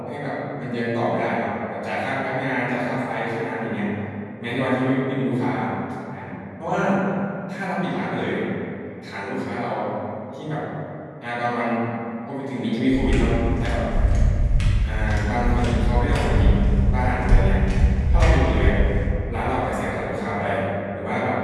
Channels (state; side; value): identical; both; correlation 1.00